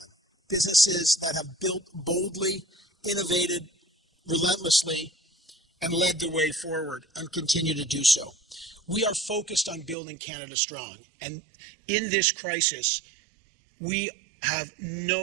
businesses that have built boldly, innovated relentlessly, and led the way forward and continue to do so. We are focused on building Canada strong, and in this crisis, we have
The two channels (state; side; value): drops out; left; at 10.0 s